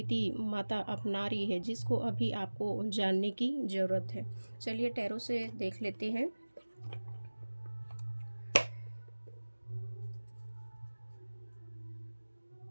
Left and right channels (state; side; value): inverted; both; correlation -1.00